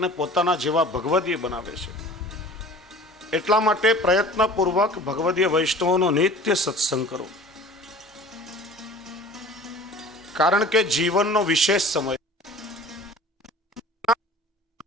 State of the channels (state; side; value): normal; both; correlation 0.43